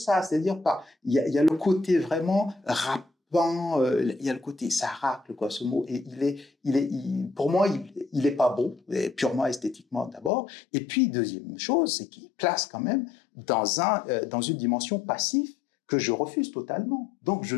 c'est-à-dire il y a le côté vraiment rappant, il y a le côté ça racle quoi ce mot et pour moi il est pas beau, purement esthétiquement d'abord, et puis deuxième chose c'est qu'il place quand même dans une dimension passive que je refuse totalement. Donc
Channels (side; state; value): right; drops out; at 10.3 s